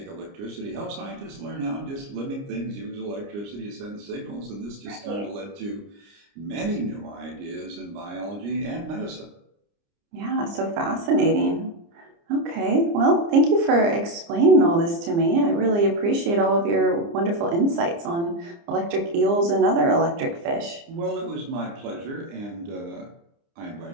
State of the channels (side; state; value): left; late; 29 ms